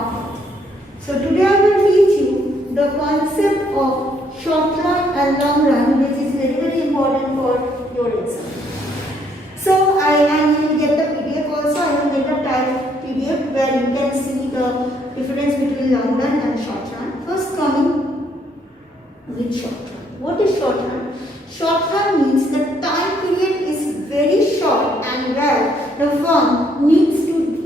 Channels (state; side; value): normal; both; correlation 0.69